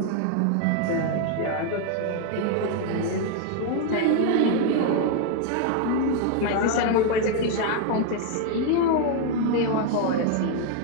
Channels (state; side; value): different; both; correlation 0.01